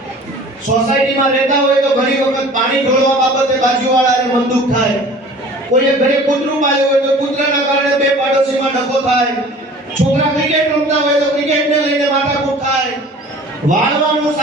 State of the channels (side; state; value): both; normal; correlation 0.45